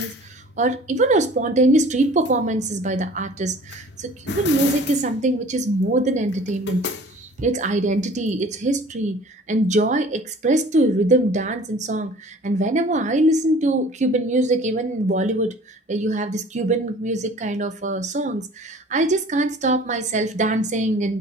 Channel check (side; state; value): both; normal; correlation 0.47